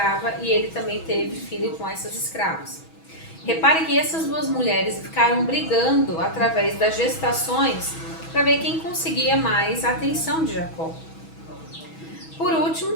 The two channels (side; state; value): right; late; 6.2 ms